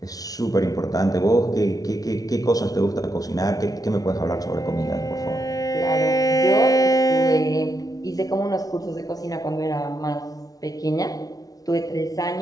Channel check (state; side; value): late; right; 0.18 ms